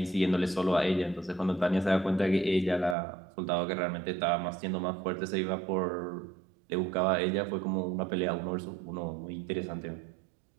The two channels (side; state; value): left; drops out; at 3.0 s